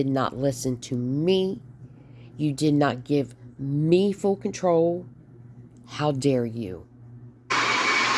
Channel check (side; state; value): both; identical; correlation 1.00